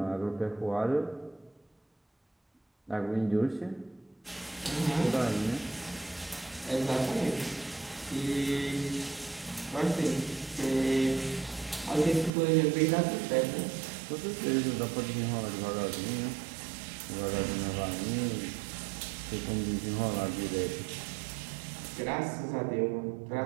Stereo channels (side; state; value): left; drops out; at 12.3 s